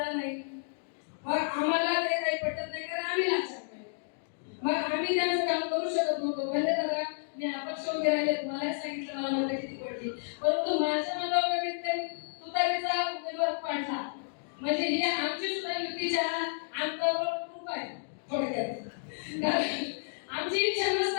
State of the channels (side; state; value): right; silent; digital silence